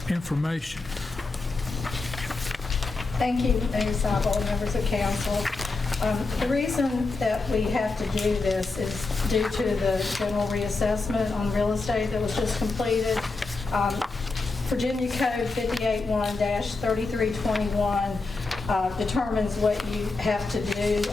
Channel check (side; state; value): right; quieter; 3.7 dB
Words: information. Thank you, Mayor Seibel, members of council. The reason that we have to do this is due to the general reassessment on real estate that was just completed. Virginia Code 581-3321 determines what you have to do